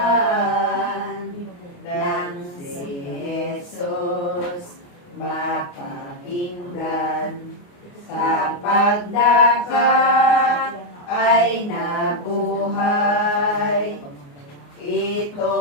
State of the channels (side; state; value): right; late; 28 ms